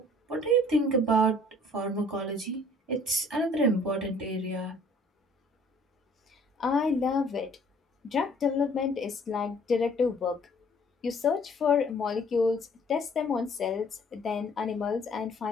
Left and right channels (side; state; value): both; normal; correlation 0.55